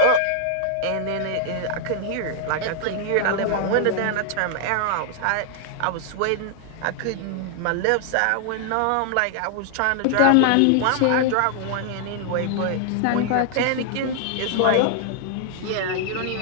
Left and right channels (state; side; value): different; both; correlation 0.00